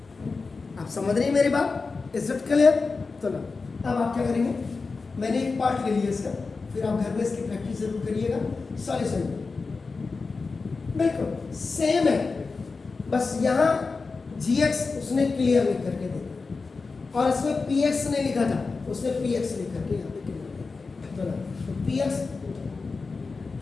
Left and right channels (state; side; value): quieter; right; 4.3 dB